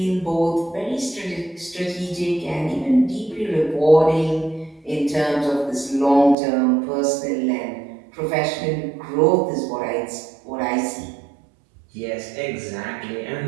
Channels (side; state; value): left; drops out; at 6.4 s